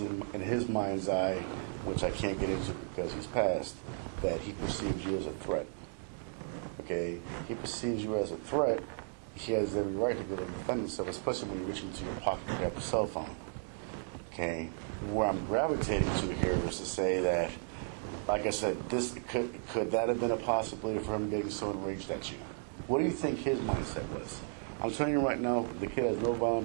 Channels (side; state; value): left; silent; 55 dB below the other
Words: his mind's eye, which I can't get into because he's passed, that he perceives you as a threat. Okay? He perceives you as a threat. He has every right to go to defend himself, especially when you reach into your pocket and grab your cell phone. Okay? Where I'm gravitating to here is to say that, like I said, this could that have been a possibility for him getting so enraged at you? What do you think his mindset was? I'm telling you right now, the kid has no